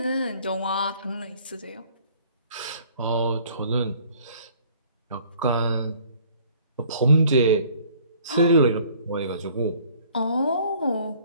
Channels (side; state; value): both; inverted; correlation -0.56